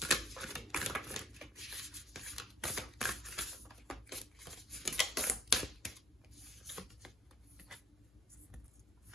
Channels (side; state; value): both; normal; correlation 0.56